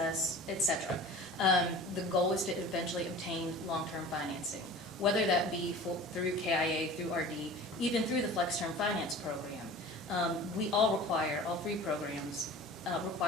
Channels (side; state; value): both; normal; correlation 0.40